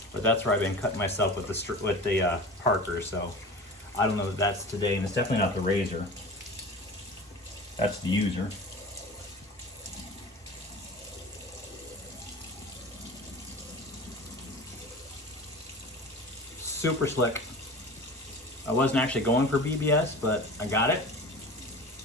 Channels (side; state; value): both; normal; correlation 0.36